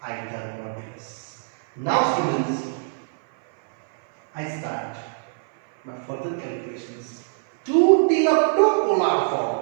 Hypotenuse. Now students, I start my further calculations to till up to polar form.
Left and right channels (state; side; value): silent; left; 59 dB below the other